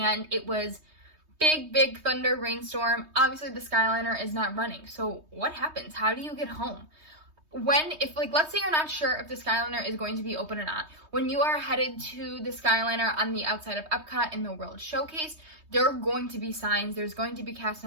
it was big thunder rainstorm. Obviously the Skyliner is not running. So what happens? How do you get home? If let's say you're not sure if the Skyliner is going to be open or not, when you are headed to the Skyliner on the outside of Epcot in the World Showcase, there are going to be signs, there's going to be cast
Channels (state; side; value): late; left; 3.2 ms